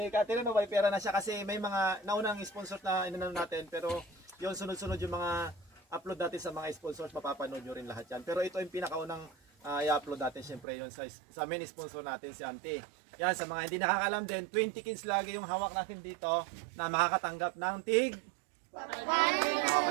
Catherine, no, may pera na siya kasi may mga naunang sponsor na inano natin pero yun sunod-sunod yung mga upload natin sa mga sponsors, mapapanood nyo rin lahat yan. Pero ito yung pinakaunang i-upload natin syempre yun sa main sponsor natin si Auntie. Yan, sa mga hindi nakakalam din, 20 kids lagi yung hawak natin dito na makakatanggap ng tig.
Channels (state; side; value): drops out; left; at 10.7 s